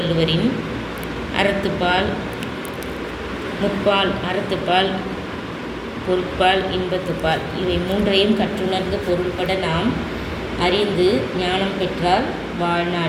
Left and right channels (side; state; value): both; identical; correlation 1.00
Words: அறத்துப்பால், முப்பால், அறத்துப்பால், பொருட்பால், இன்பத்துப்பால் இவை மூன்றையும் கற்றுணர்ந்து பொருள்பட நாம் அறிந்து ஞானம் பெற்றால்